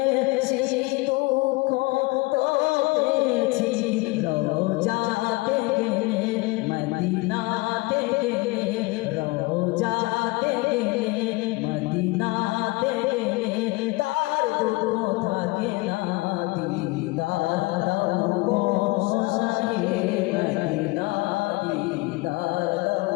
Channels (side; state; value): right; quieter; 23.6 dB